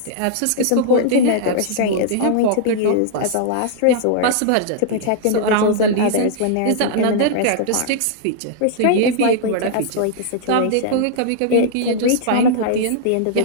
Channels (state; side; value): different; both; correlation -0.01